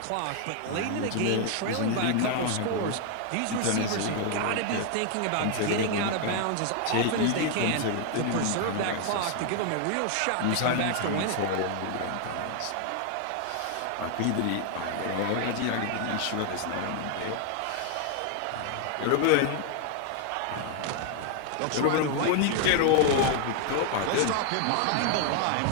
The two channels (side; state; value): both; different; correlation 0.00